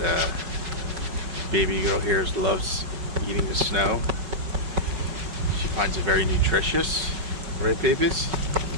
baby girl here loves eating the snow. She finds it very nutritious, right, babies?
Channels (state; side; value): late; left; 5.3 ms